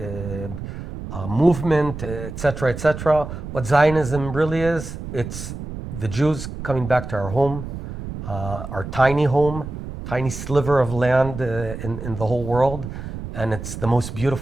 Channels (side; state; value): right; noise; rumble, 9 dB below the sound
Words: movement, etc., etc. What Zionism really is, it's the Jews coming back to our home, our tiny home, tiny sliver of land in the whole world, and it's the most